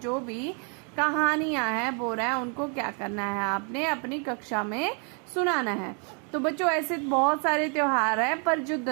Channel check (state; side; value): quieter; left; 38.9 dB